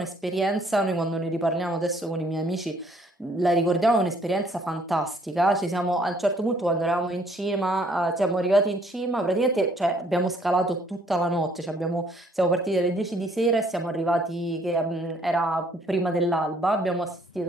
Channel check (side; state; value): both; normal; correlation 0.63